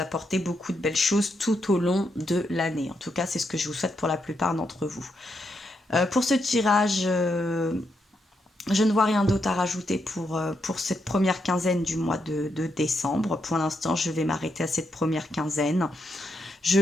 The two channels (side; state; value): both; normal; correlation 0.81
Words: beaucoup de belles choses tout au long de l'année. En tout cas, c'est ce que je vous souhaite pour la plupart d'entre vous. Pour ce tirage, je ne vois rien d'autre à rajouter pour cette première quinzaine du mois de décembre. Pour l'instant, je vais m'arrêter à cette première quinzaine. Je